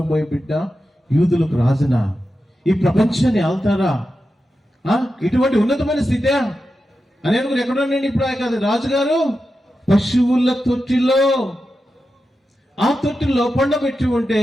బిడ్డ యూదులకు రాజునా, ఈ ప్రపంచాన్ని ఆల్తారా, ఇటువంటి ఉన్నతమైన స్థితే అని అనుకుని ఎక్కడున్నాను ఇప్పుడు కాదు రాజుగారు పశువుల తొట్టిలో, ఆ తొట్టిలో పండబెట్టి ఉంటే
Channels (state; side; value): normal; both; correlation 0.90